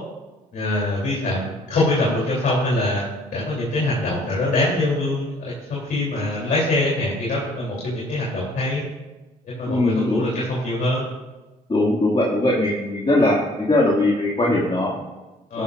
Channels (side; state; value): both; normal; correlation 0.59